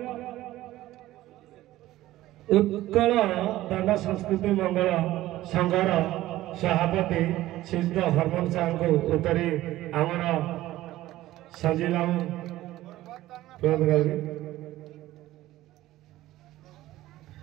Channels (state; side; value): quieter; left; 15.6 dB